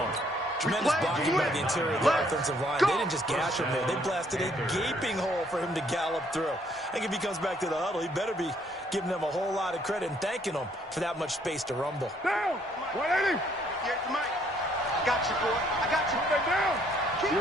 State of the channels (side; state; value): both; normal; correlation 0.66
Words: Tremendous blocking by the interior of the offensive line. They didn't just gash him there. They blasted a gaping hole for him to gallop through. I think if he comes back to the huddle, he better be giving them a whole lot of credit and thanking them for that much space to rumble. Down. 180. Here's the mic. Got you, boy. I got you. Stay down.